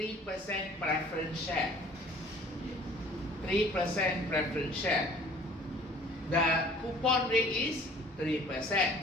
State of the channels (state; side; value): normal; both; correlation 0.51